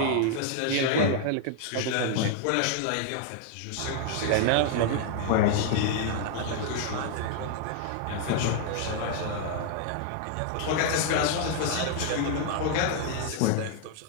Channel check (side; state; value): both; different; correlation 0.00